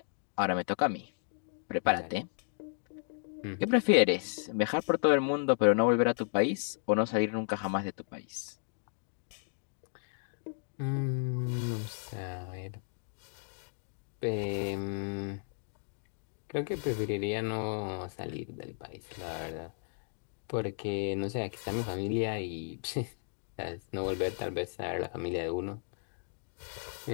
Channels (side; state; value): right; silent; digital silence